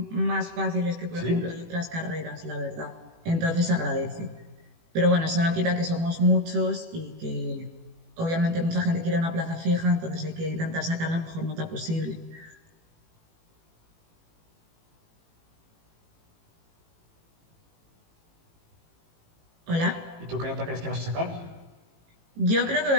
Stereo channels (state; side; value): late; left; 18 ms